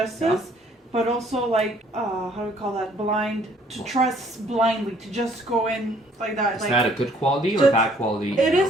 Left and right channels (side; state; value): both; normal; correlation 0.61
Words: but also like how do we call that? Blind to trust blindly to just go in like that. Is like, that a good quality or just- bad quality? It in your